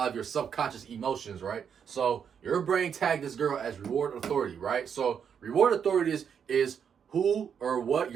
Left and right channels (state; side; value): quieter; left; 7.5 dB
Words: of your subconscious emotions, right? So your brain tagged this girl as reward authority, right? So reward authority is who or what